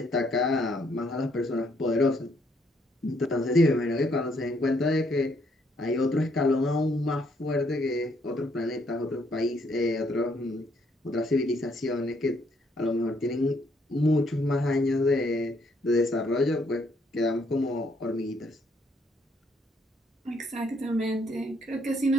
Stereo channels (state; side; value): normal; both; correlation 0.70